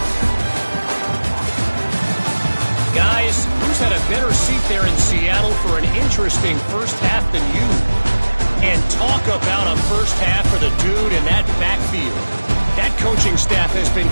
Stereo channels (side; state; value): both; inverted; correlation -1.00